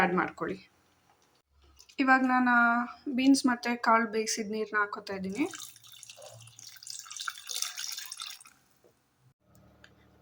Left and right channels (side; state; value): both; identical; correlation 1.00